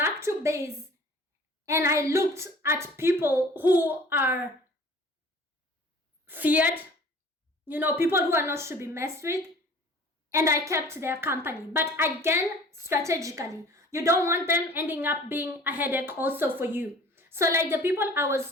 to base and I looked at people who are feared, people who are not to be messed with, and I kept their company. But again, strategically, you don't want them ending up being a headache also for you. So like the people I was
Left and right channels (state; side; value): normal; both; correlation 0.47